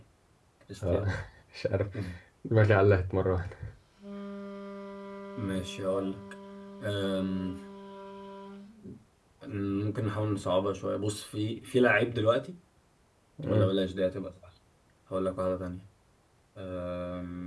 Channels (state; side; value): identical; both; correlation 1.00